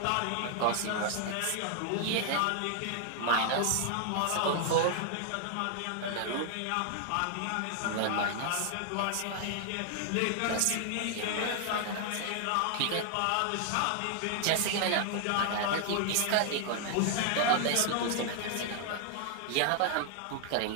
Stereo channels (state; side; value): different; both; correlation 0.00